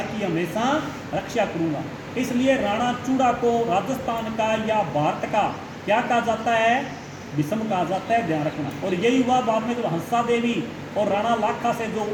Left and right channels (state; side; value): identical; both; correlation 1.00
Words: की हमेशा रक्षा करूँगा। इसलिए राणा चूड़ा को राजस्थान का या भारत का क्या कहा जाता है? भीष्म कहा जाता है, ध्यान रखना। और यही हुआ बाद में जब हंसा देवी और राणा लाखा से जो